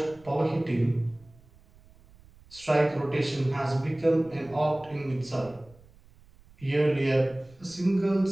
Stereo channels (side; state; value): right; noise; rumble, 26 dB below the sound